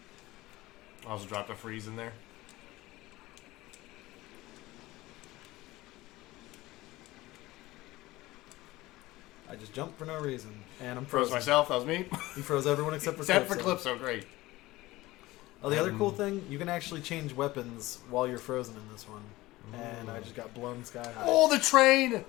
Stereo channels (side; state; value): right; quieter; 18.7 dB